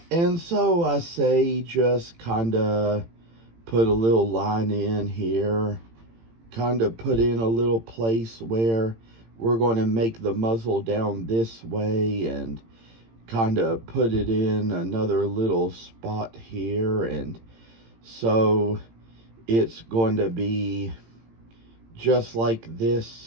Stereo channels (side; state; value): left; late; 18 ms